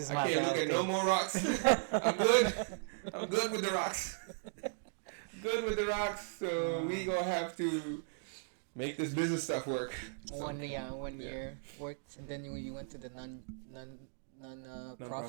I can't look at no more rocks. I'm good. I'm good with the rocks. Good with the rocks. So we gonna have to make this business stuff work. So, one year worked, and then you went to the non-profit.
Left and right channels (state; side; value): silent; left; digital silence